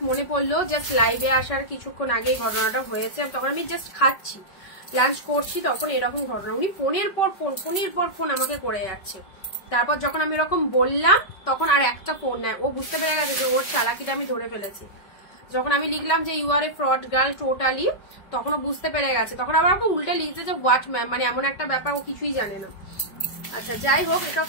মনে পড়লো, জাস্ট লাইভে আসার কিছুক্ষণ আগে ঘটনাটা হয়েছে, তখন আমি জাস্ট খাচ্ছি, লাঞ্চ করছি, তখন এরকম ঘটনা। উনি ফোনের পর ফোন আমাকে করে যাচ্ছে। তারপর যখন আমি এরকম বললাম তখন আর একটা ফোন নেয়, ও বুঝতে পেরে গেছে যে ওর চালাকিটা আমি ধরে ফেলেছি। যখন আমি লিখলাম যে you are a fraud girl totally, তখন ও বুঝতে পেরে গেছে। তখন আবার ওকে উল্টে লিখছে যে হোয়াট ম্যাম, মানে এমন একটা ব্যাপার ও কিছুই জানে না। আচ্ছা যাই হোক, এটা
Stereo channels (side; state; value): right; late; 5.3 ms